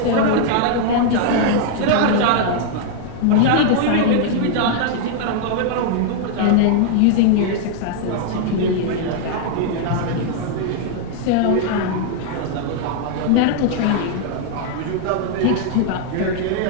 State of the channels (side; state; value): both; different; correlation 0.00